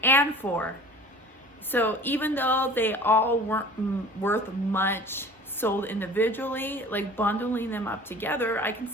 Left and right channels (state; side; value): normal; both; correlation 0.44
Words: and 4. So even though they all weren't worth much sold individually, like bundling them up together, I can